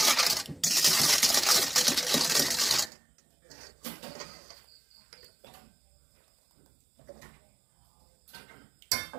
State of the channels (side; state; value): left; drops out; at 2.9 s